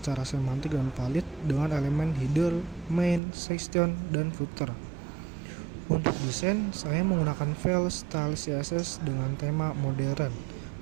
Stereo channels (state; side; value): drops out; left; at 3.2 s